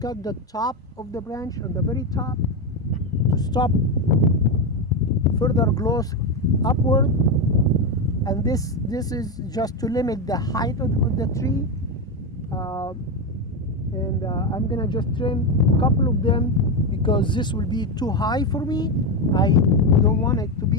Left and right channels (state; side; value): normal; both; correlation 0.11